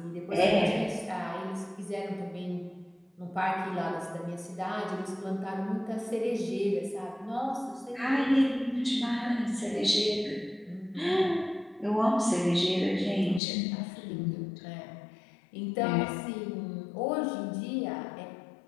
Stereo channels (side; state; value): right; drops out; at 13.4 s